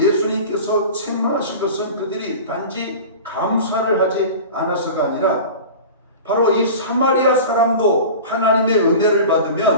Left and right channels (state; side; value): inverted; both; correlation -0.35